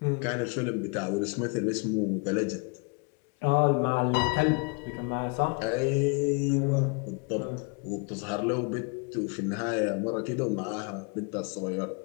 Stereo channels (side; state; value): right; quieter; 33.2 dB